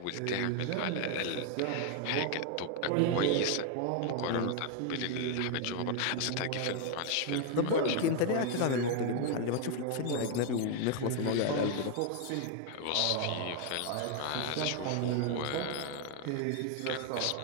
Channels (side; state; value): both; different; correlation 0.00